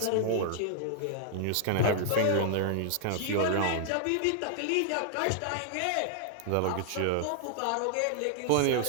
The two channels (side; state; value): both; different; correlation -0.01